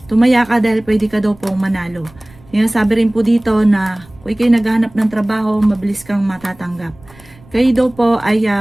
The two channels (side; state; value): right; noise; rumble, 25 dB below the sound